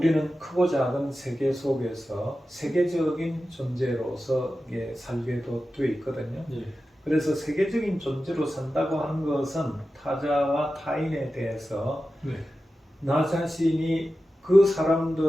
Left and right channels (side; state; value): both; normal; correlation 0.93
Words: 크고 작은 세계 속에서 세계적인 존재로서 살게도 돼 있거든요. 네. 그래서 세계적인 존재로 산다고 하는 것은 타자와 타인에 대해서 네. 나 자신이 그